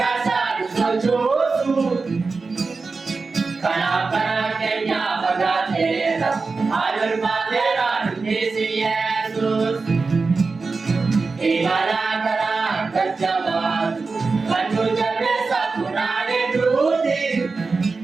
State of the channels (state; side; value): quieter; left; 4.2 dB